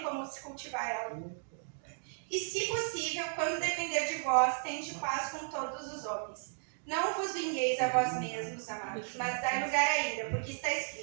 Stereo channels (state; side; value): silent; left; digital silence